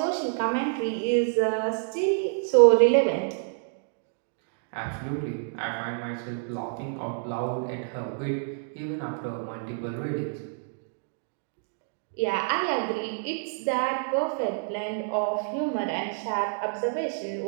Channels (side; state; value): left; silent; digital silence